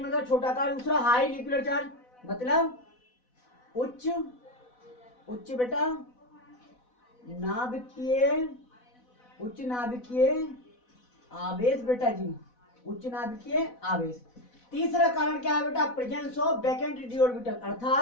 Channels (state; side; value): late; right; 4.1 ms